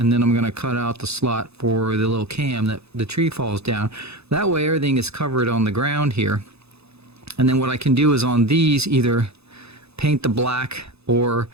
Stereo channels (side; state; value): left; late; 0.79 ms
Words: then I'm going to cut out the slot for the little cam that the tree falls down. That way everything is covered on the ground here. And then what I can do is on these either paint the black, or